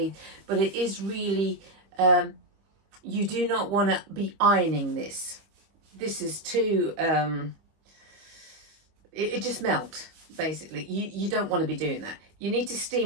but it is really, you do not want to be ironing this. This is too, it just melt, basically. You don't want to be doing that. You need to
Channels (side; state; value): left; late; 25 ms